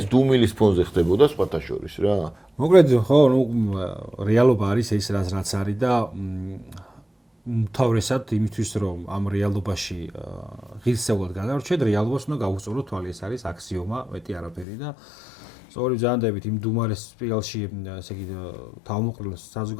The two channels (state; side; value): drops out; right; at 14.7 s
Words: დუმილის ფონზე ხდებოდა სხვათა შორის რა. მოკლედ ხო, ნუ რეალობა არის ეს რაც არის და თავრესად იმისთვის რომ ამ რეალობაში ღირსეულად გადავრჩეთ, რეალობას უნდა გავუსწორო თვალი, ეს არის აქსიომა, მეტი არაფერი და სწორი ზანდებით იმ დუმარეს სპირალში, ესე იგი თავმოყრილ